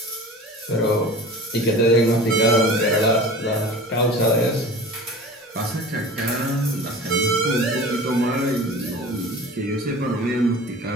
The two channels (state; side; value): normal; both; correlation 0.38